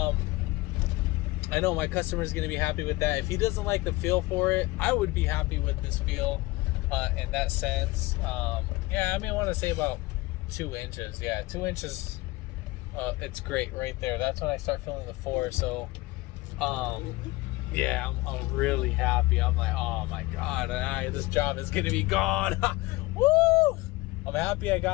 I know my customer is going to be happy with that. If he doesn't like the feel for it, I would be happy with this feel in that sense. Yeah, I mean I want to say about 2 inches. Yeah, 2 inches. It's great right there. That's when I start feeling the force. So yeah, I'm really happy. I'm like, oh my god, this job is gonna be gone. Woo! I'm happy I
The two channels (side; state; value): right; quieter; 20.7 dB